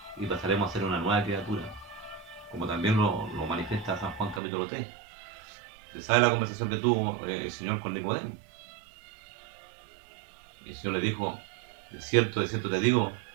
y pasaremos a ser una nueva criatura, como también lo manifiesta San Juan capítulo 3. ¿Se sabe la conversación que tuvo el Señor con Nicodemo? El Señor le dijo, de cierto te digo,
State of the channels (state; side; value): drops out; left; at 4.4 s